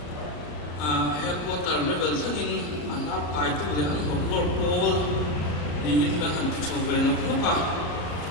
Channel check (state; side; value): late; right; 34 ms